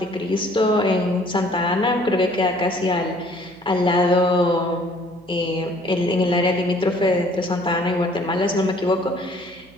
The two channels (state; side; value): noise; right; hum, 27 dB below the sound